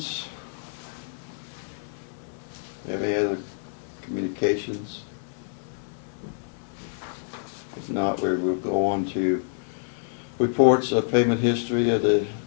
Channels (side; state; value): right; silent; 60 dB below the other